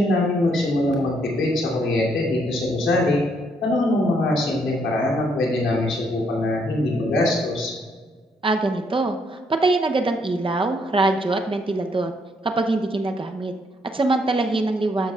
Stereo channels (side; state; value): both; normal; correlation 0.72